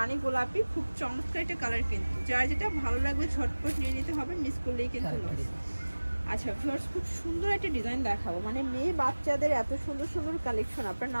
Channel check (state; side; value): inverted; both; correlation -1.00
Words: গোলাপি, খুব চমৎকার একটা কালার। কিন্তু যার যেটা ভালো লাগবে ঝটপট নিয়ে নিতে হবে, মিস করলেই কিন্তু লস। আচ্ছা ভিউয়ার্স, খুব সুন্দর একটা ডিজাইন দেখাবো, মানে মেয়ে বাচ্চাদের এত সুন্দর সুন্দর কালেকশন আপনারা